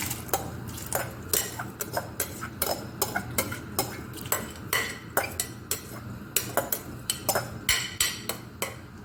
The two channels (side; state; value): both; identical; correlation 1.00